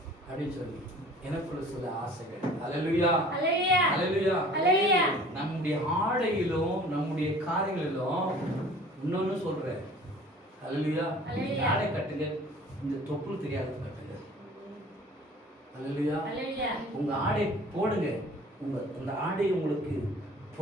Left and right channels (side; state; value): both; normal; correlation 0.48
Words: அப்படின்னு சொல்லி எனக்குள்ள சில ஆசைகள். அல்லேலூயா. அல்லேலூயா. அல்லேலூயா. அல்லேலூயா. நம்முடைய ஆடையிலும் நம்முடைய காரியங்களிலும் இன்னொன்னு சொல்றேன். அல்லேலூயா. அல்லேலூயா. ஆடை கட்டுங்க, இந்த தொப்புள் தெரியாத கட்டுங்க. அல்லேலூயா. அல்லேலூயா. உங்க ஆடை போடுங்க, அந்த ஆடை உங்களுக்கு